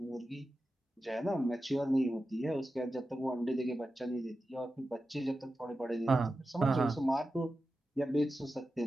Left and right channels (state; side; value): normal; both; correlation 0.92